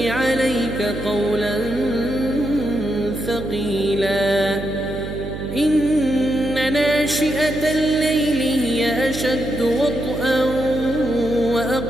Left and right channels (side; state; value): right; noise; hum, 9 dB below the sound